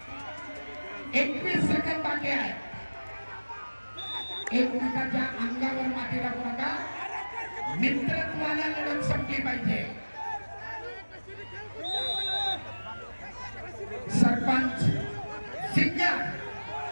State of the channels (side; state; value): both; inverted; correlation -1.00